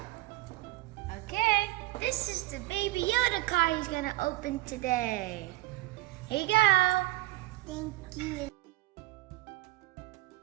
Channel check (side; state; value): left; quieter; 18.9 dB